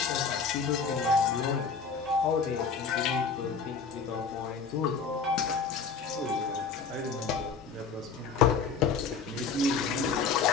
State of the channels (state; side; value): quieter; right; 5.4 dB